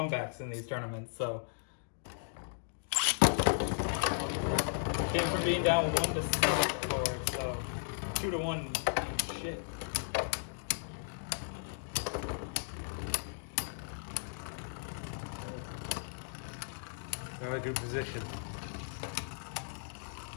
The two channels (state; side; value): silent; right; digital silence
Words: in these tournaments, so. Came from being down 1-7 before, so 2-1. Shit. Not a good position.